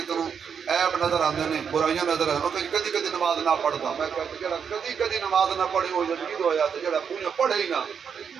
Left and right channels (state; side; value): quieter; left; 7.0 dB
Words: تنوں عیب نظر آندے نے برائیاں نظر آندے نے، کدی کدی نماز نہ پڑھتا، میں کہتا جڑا کدی کدی نماز نہ پڑھی وہ جدید ہویا تو جڑا پونے پڑھے ہی نہ